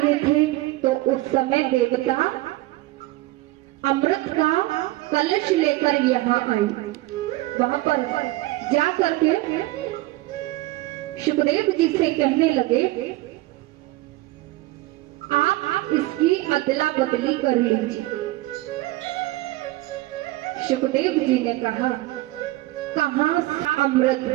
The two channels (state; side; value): quieter; left; 18.4 dB